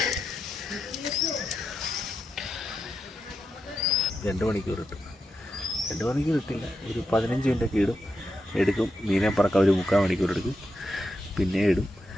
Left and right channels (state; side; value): normal; both; correlation 0.86